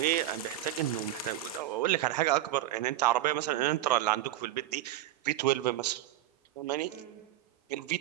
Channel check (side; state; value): left; quieter; 13.6 dB